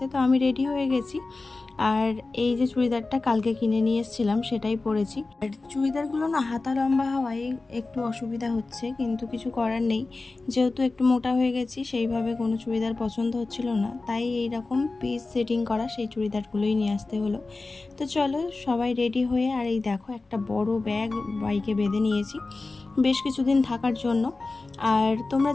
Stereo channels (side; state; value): right; quieter; 3.5 dB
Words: তো আমি রেডি হয়ে গেছি আর এই যে চুড়িদারটা কালকে কিনে নিয়ে এসেছিলাম সেটাই পরেছি। আর চুড়িদারগুলো না হাতা লম্বা হওয়ায় একটু অসুবিধা হচ্ছে, কিন্তু কিছু করার নেই, যেহেতু একটু মোটা হয়ে গেছি সেইভাবে কোনো চুড়িদার পছন্দ হচ্ছিল না, তাই এইরকম পিস সেটিং করা সেই চুড়িদারগুলোই নিয়ে আসতে হলো। তো চলো সবাই রেডি হয়ে, আর এই দেখো একটা বড় ব্যাগ বাইকে বেঁধে নিয়েছি বেশ কিছুদিন থাকার জন্য। আর তোমরা